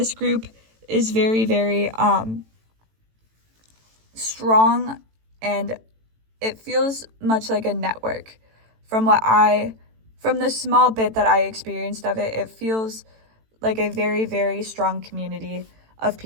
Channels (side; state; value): left; late; 18 ms